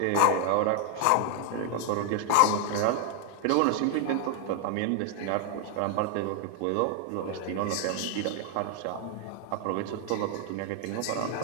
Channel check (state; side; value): different; both; correlation 0.00